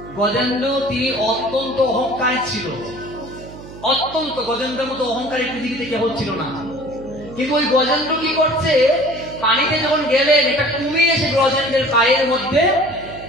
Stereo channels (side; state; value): right; noise; hum, 16 dB below the sound